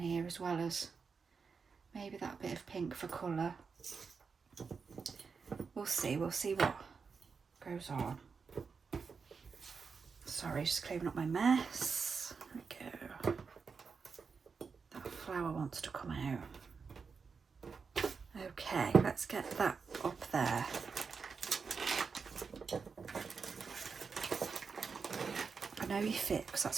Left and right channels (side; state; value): left; quieter; 5.3 dB